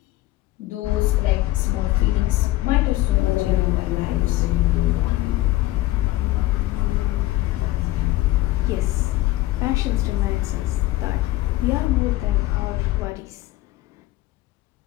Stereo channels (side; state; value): right; quieter; 17.6 dB